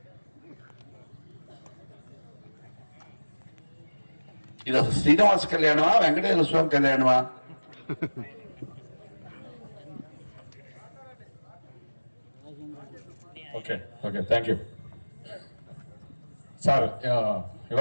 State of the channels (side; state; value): both; inverted; correlation -1.00